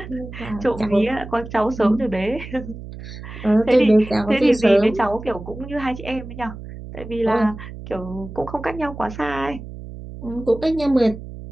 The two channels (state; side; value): noise; right; hum, 12 dB below the sound